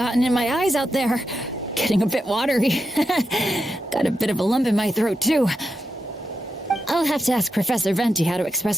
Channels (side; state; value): both; normal; correlation 0.85